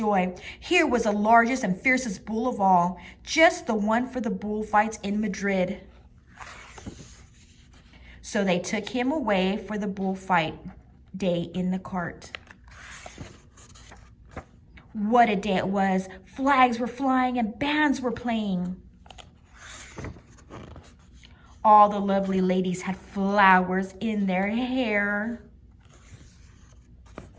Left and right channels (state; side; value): identical; both; correlation 1.00